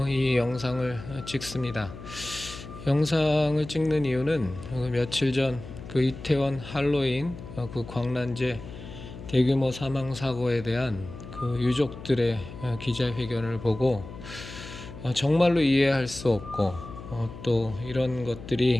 이 영상을 찍습니다. 영상을 찍는 이유는 며칠 전 그 이태원 할로윈 그 광란제 대규모 사망 사고에 대한 그 유족들의 기자회견을 보고 정말로 이해할 수 없고 또 이런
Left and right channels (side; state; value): left; noise; hum, 13 dB below the sound